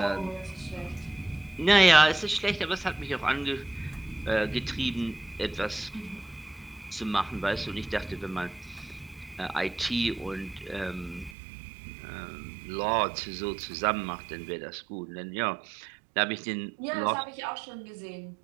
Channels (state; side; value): drops out; left; at 11.4 s